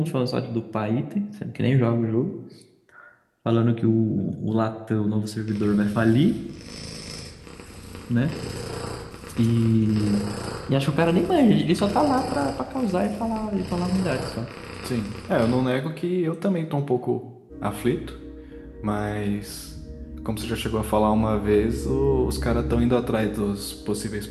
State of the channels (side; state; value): both; identical; correlation 1.00